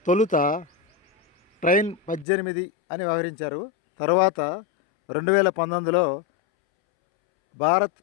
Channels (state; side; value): drops out; right; at 2.2 s